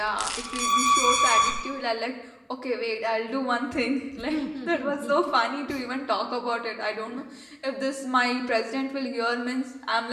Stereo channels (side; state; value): both; identical; correlation 1.00